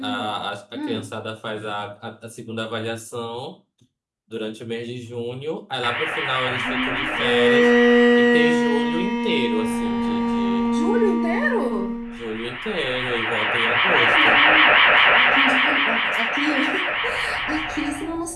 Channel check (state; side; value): identical; both; correlation 1.00